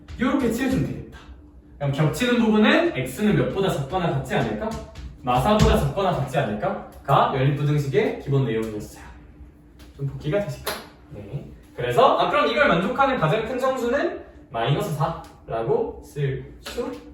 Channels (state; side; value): identical; both; correlation 1.00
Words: 이렇게 칠해주면 되겠다. 그럼 겹치는 부분은 x는 몇보다 작거나 같지 않을까? 마사보다 작거나 같지 않을까?가 연립부등식의 기본 내용이었어요. 좀 복기가 되실까? 네. 그래서 그럼 이걸 만족하는 가장 큰 정수는 마이너스 4라고 쓸 수